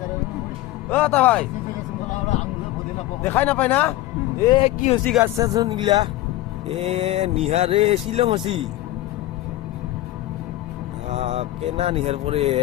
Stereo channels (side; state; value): right; quieter; 16.0 dB